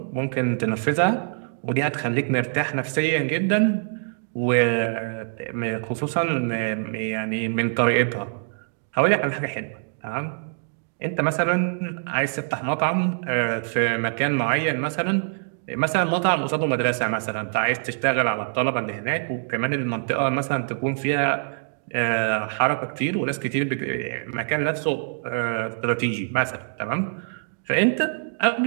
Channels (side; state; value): left; silent; digital silence